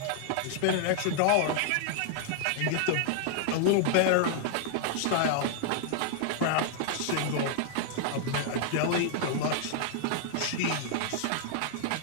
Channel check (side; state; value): both; different; correlation -0.01